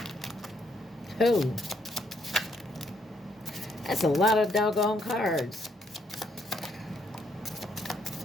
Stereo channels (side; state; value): both; normal; correlation 0.72